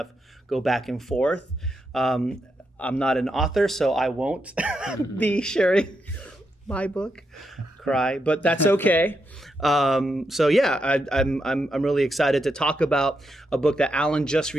go back and forth. I'm not an author, so I won't be sharing my book, but that's okay. I'm really excited to talk about a book that Alan just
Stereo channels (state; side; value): normal; both; correlation 0.83